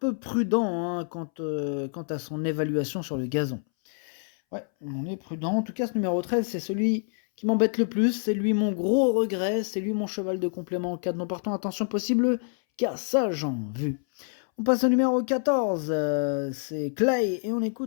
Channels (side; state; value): right; silent; 60 dB below the other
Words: prudents quant à son évaluation sur le gazon. Ouais, on est prudent. En tout cas, ce numéro 13, c'est celui qui m'embête le plus. C'est lui mon gros regret. C'est lui mon cheval de complément en cas de non partant. Attention possible, car ça, j'en vu. On passe au numéro 14. C'est Clay et on